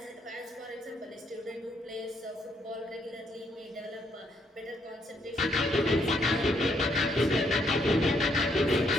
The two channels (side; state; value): both; normal; correlation 0.73